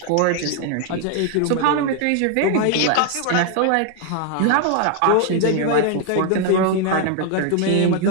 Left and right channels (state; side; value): different; both; correlation 0.00